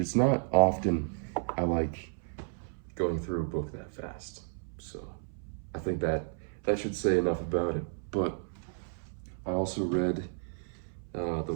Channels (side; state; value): left; silent; 56 dB below the other